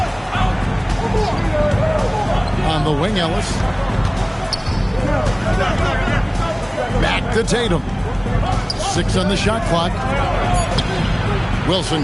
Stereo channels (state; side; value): identical; both; correlation 1.00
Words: On the wing, Ellis. Back to Tatum. 6 on the shot clock. Wilson